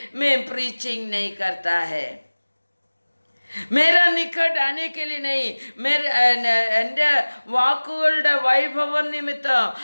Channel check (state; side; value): inverted; both; correlation -1.00